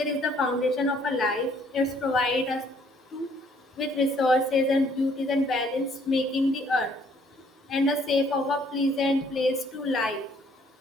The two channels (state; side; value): normal; both; correlation 0.63